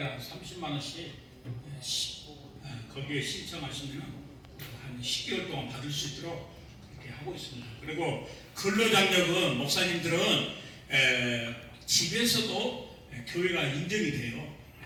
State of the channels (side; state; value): both; identical; correlation 1.00